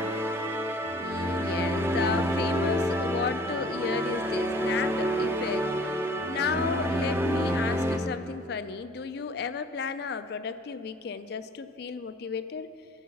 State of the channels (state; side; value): normal; both; correlation 0.52